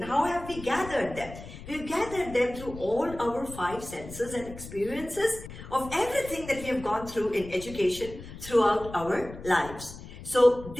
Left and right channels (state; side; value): noise; left; rumble, 14 dB below the sound